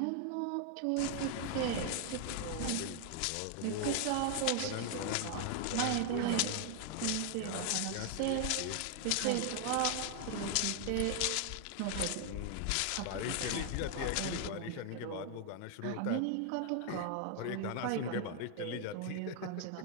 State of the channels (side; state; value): both; different; correlation 0.00